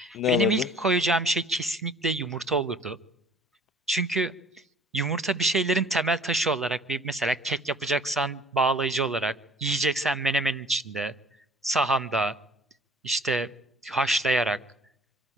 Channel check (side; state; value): both; normal; correlation 0.51